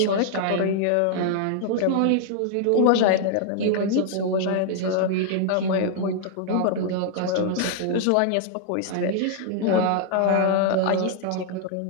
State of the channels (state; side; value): different; both; correlation 0.00